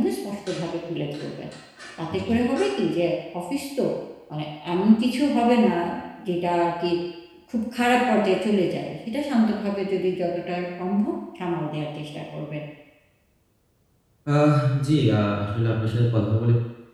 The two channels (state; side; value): identical; both; correlation 1.00